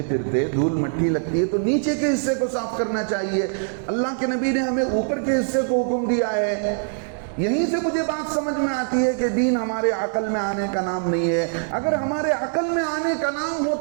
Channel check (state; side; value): silent; left; digital silence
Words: پھرتے دھول مٹی لگتی ہے تو نیچے کے حصے کو صاف کرنا چاہیے۔ اللہ کے نبی نے ہمیں اوپر کے حصے کو حکم دیا ہے۔ یہیں سے مجھے بات سمجھ میں آتی ہے کہ دین ہمارے عقل میں آنے کا نام نہیں ہے۔ اگر ہمارے عقل میں آنے کا نام